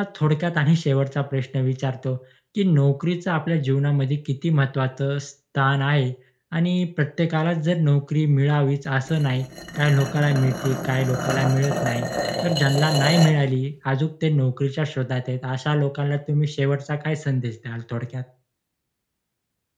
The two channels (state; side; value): identical; both; correlation 1.00